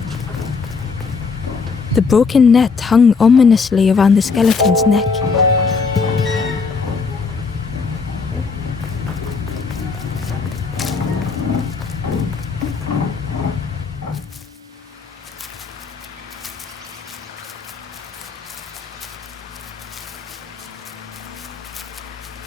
The broken net hung ominously around the skeleton's neck.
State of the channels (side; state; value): right; quieter; 4.9 dB